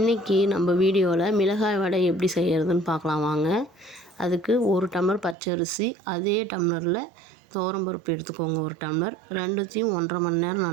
நம்ம வீடியோவில் மிளகாய் வடை எப்படி செய்கிறதுன்னு பார்க்கலாம் வாங்க. அதுக்கு 1 டம்ளர் பச்சரிசி, அதே டம்ளரில் துவரம்பருப்பு எடுத்துக்கோங்க 1 டம்ளர். ரெண்டுத்தையும் 1.5 மணி நேரம்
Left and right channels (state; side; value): drops out; left; at 5.4 s